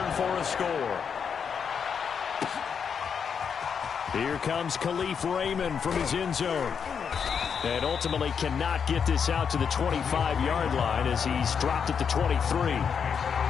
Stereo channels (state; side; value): quieter; right; 6.8 dB